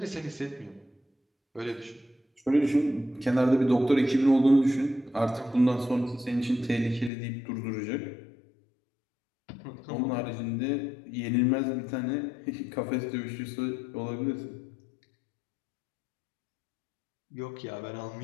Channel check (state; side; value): drops out; right; at 7.1 s